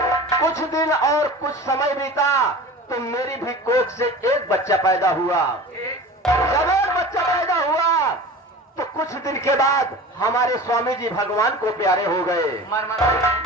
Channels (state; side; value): normal; both; correlation 0.36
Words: दिन और कुछ समय बीता तो मेरी भी कोख से एक बच्चा पैदा हुआ। जब एक बच्चा पैदा हुआ तो कुछ दिन के बाद हमारे स्वामी जी भगवान को प्यारे हो गए,